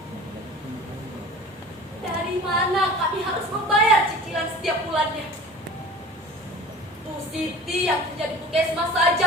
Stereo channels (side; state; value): both; normal; correlation 0.41